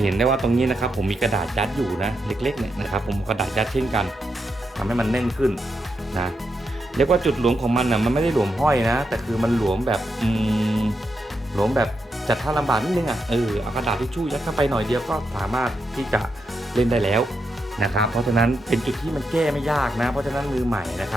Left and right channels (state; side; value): normal; both; correlation 0.84